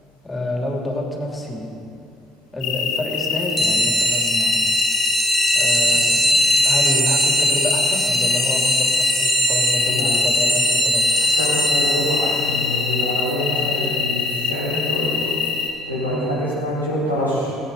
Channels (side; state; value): both; normal; correlation 0.66